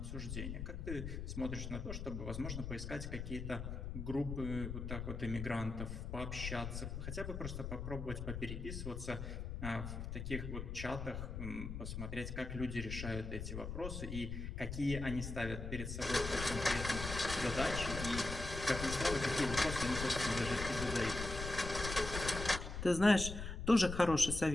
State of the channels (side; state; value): left; noise; rumble, 5 dB below the sound